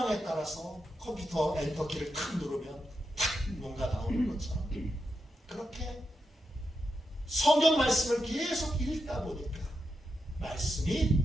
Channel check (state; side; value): normal; both; correlation 0.86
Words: 따라서 컴퓨터 엔터키를 탁 누르면 탁 뭔가 나오는 것처럼 그렇게 성경 말씀을 계속 읽다 보니까 말씀이